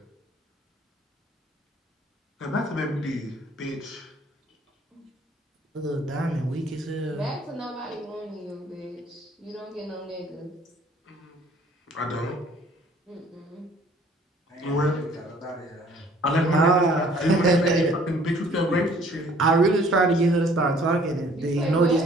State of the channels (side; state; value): both; normal; correlation 0.56